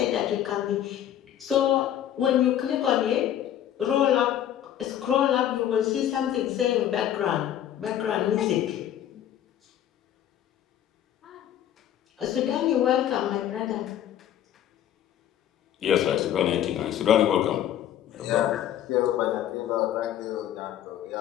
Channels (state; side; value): quieter; right; 11.1 dB